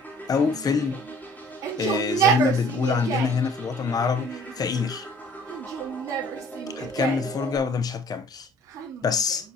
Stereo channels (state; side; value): normal; both; correlation 0.54